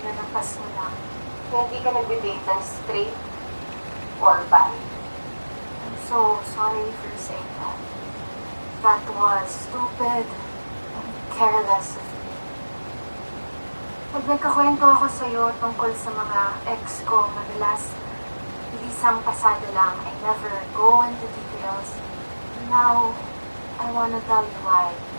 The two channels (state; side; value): inverted; both; correlation -1.00